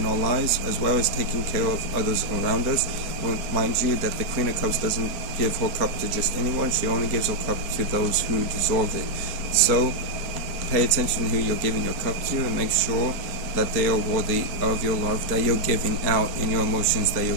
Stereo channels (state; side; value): late; left; 4.3 ms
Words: our lives, as well as taking care of others around us. Well, mind you that the Queen of Cups doesn't give her cup to just anyone. She only gives her cup to those who deserve it. So pay attention to who you're giving your cup to, and make sure that they are worthy of your love that you're giving out, and your emotions that